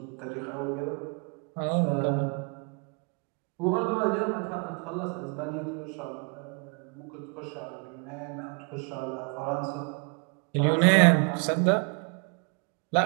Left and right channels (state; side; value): quieter; left; 34.5 dB